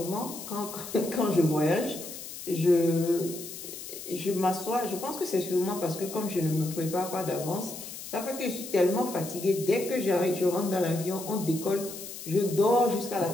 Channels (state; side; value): noise; left; hiss, 11 dB below the sound